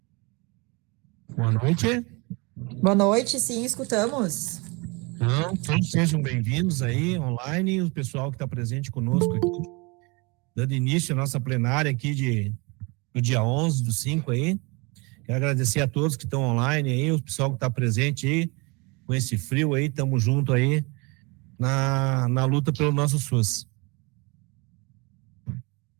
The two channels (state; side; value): quieter; left; 28.1 dB